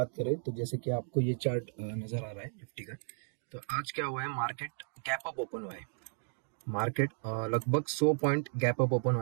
करें तो जैसे कि आपको ये चार्ट नजर आ रहा है निफ्टी का। तो आज क्या हुआ है, मार्केट गैप अप ओपन हुआ है। मार्केट लगभग 100 पॉइंट गैप अप ओपन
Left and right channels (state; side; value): silent; left; digital silence